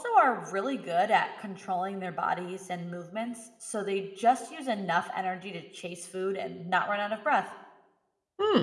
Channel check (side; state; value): both; identical; correlation 1.00